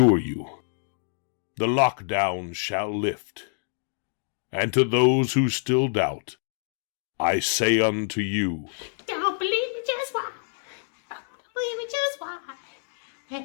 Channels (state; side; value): silent; right; digital silence